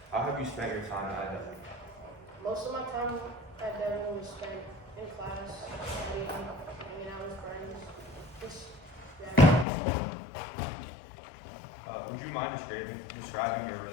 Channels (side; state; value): right; drops out; at 9.7 s